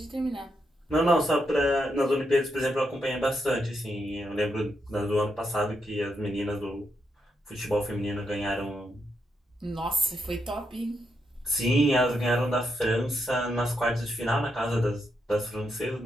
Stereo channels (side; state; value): both; normal; correlation 0.81